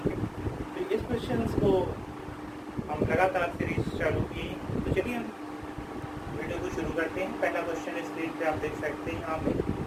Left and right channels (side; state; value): both; identical; correlation 1.00